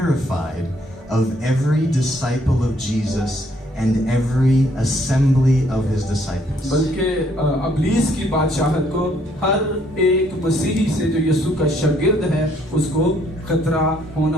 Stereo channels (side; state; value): both; normal; correlation 0.67